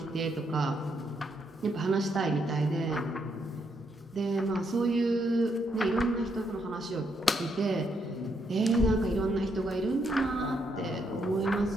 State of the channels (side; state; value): both; normal; correlation 0.76